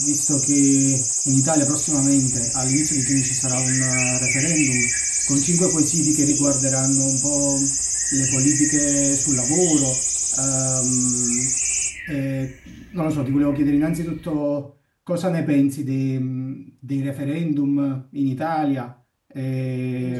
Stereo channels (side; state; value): both; identical; correlation 1.00